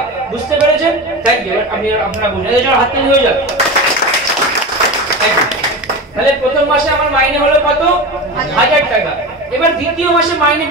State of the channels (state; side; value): normal; both; correlation 0.26